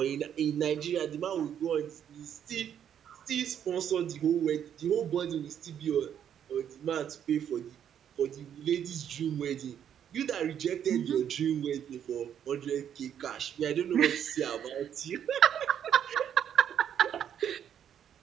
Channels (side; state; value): left; quieter; 9.2 dB